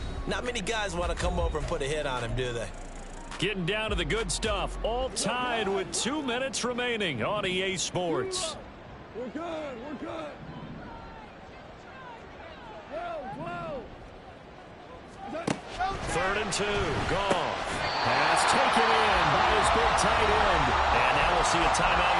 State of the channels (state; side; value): identical; both; correlation 1.00